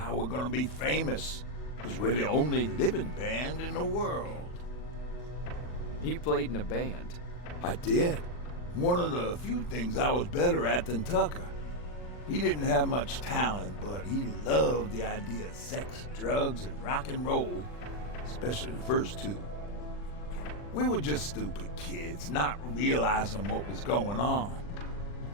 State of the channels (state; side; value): late; right; 40 ms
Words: we're gonna be famous, because we're the only living band in the world. You played in a band. I did. One of the few things I was better at than Tucker. He didn't have much talent, but he loved the idea of sex, drugs, and rock and roll, especially the first two. We were just stupid kids, not realizing what was going on.